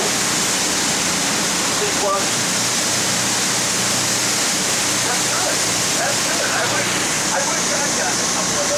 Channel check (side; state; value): both; identical; correlation 1.00